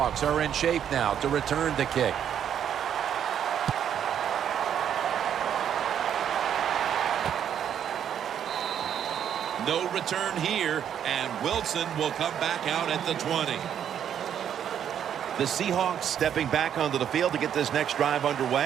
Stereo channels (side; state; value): left; quieter; 9.2 dB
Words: are in shape now to return the kick. No return here, and Wilson will come back out at the 20. The Seahawks stepping back onto the field to get this next drive